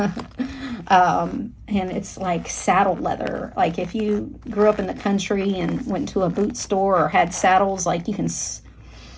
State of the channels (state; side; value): identical; both; correlation 1.00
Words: And it's like saddle leather. Like if you grew up in the country and went to a boot store or had saddles, like you can,